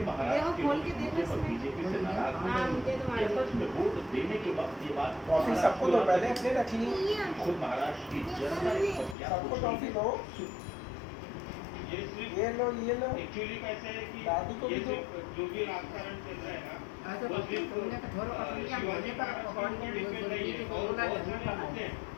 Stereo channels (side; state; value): right; drops out; at 9.2 s